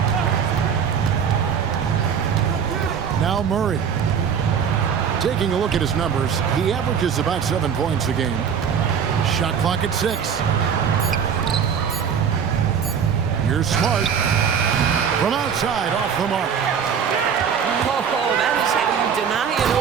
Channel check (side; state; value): left; quieter; 7.3 dB